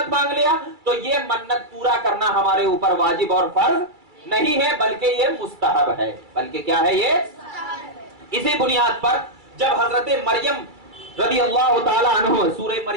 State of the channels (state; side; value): late; left; 2.3 ms